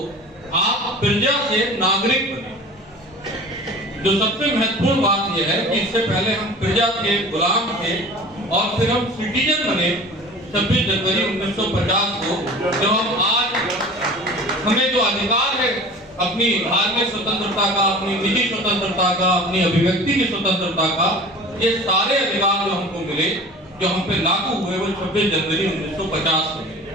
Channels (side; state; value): both; normal; correlation 0.40